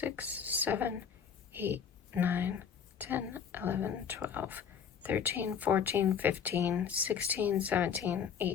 7, 8, 9, 10, 11, 12, 13, 14, 15, 16, 17,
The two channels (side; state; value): right; quieter; 7.3 dB